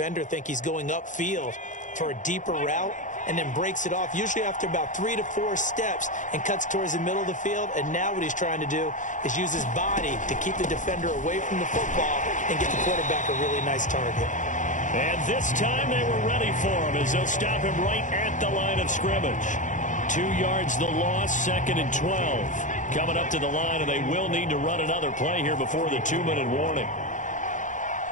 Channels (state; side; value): late; right; 0.37 ms